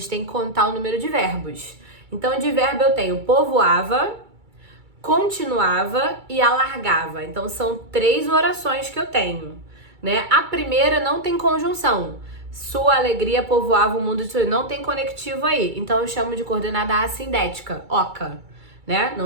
tem que contar o número de verbos. Então de verbo eu tenho povoava, continuava e alargava. Então, são 3 orações que eu tenho, né? A primeira não tem conjunção. Sua alegria povoava o mundo de sorrisos. Não tem conectivo aí. Então, eu chamo de coordenada assindética, oca, né?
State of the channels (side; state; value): left; late; 2.3 ms